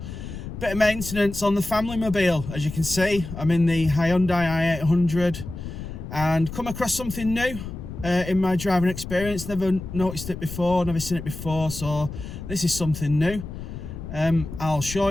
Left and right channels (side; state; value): left; noise; rumble, 9 dB below the sound